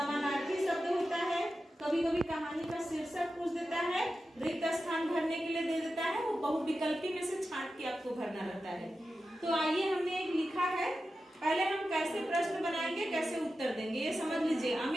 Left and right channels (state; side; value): normal; both; correlation 0.92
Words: शब्द होता है, कभी कभी कहानी का शीर्षक पूछ देता है, रिक्त स्थान भरने के लिए दे देता है, वो बहुविकल्पी में से छांट के आपको भरना रहता है। तो आइए, हमने एक लिखा है, पहले हम कैसे प्रश्न बनाएंगे, कैसे उत्तर देंगे, ये समझ लीजिए।